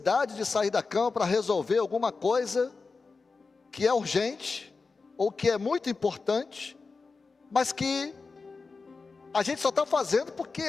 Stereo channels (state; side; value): quieter; right; 4.3 dB